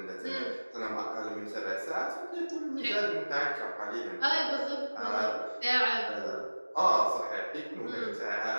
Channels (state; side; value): inverted; both; correlation -1.00